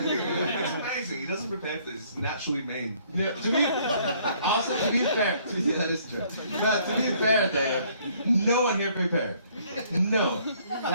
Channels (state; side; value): inverted; both; correlation -0.62